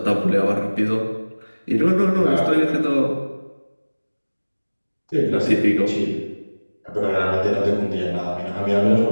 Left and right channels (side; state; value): both; inverted; correlation -1.00